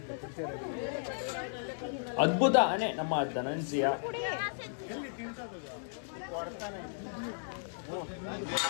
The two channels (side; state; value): right; silent; digital silence